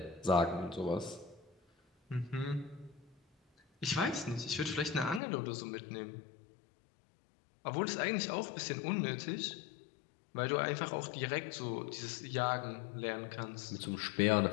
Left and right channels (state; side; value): drops out; right; at 5.2 s